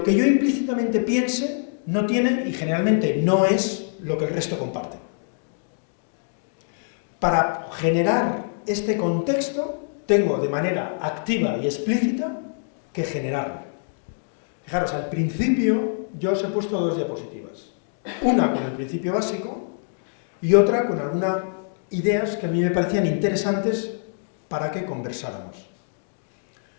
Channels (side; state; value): right; silent; digital silence